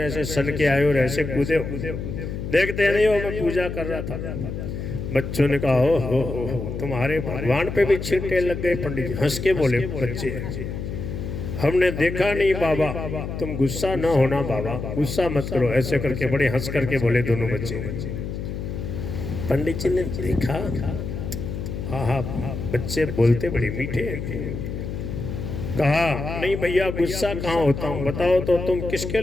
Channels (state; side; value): noise; left; hum, 6 dB below the sound